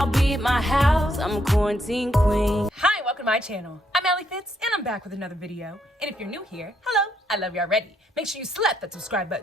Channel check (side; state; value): both; normal; correlation 0.74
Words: be at my house. I'm a quarantine queen. Hi, welcome to my channel. I'm Alli Fitz, and I'm back with another video. And if you're new here, hello, I love you already. Make sure you slap that subscribe